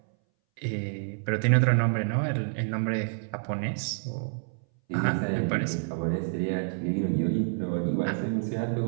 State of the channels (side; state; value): left; silent; 59 dB below the other